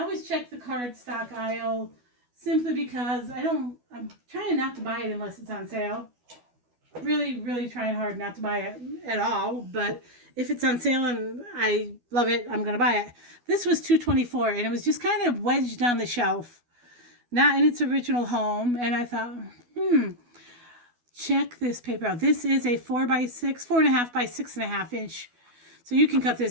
always check the cardstock aisle simply because I'm trying not to buy it unless it's on sale. Really, really trying hard not to buy it at all, but if it's on sale and I love it, I'm going to buy it. This was $2.24, and it was just kind of wedged on the shelf, not in its original home, and I thought, check this paper out. This is a 4.5 by 6.5 inch, so you can cut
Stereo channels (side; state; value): left; late; 12 ms